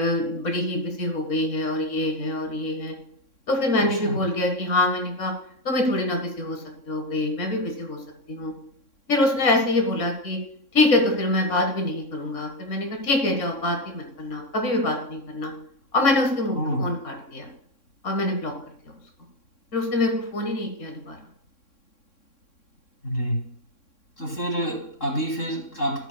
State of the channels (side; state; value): right; late; 3.6 ms